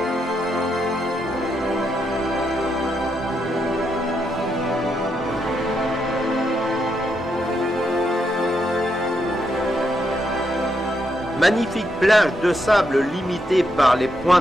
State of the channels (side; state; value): both; normal; correlation 0.80